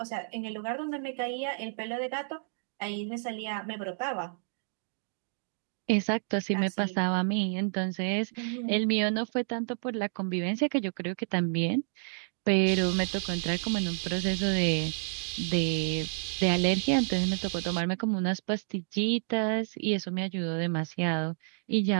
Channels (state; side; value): silent; left; digital silence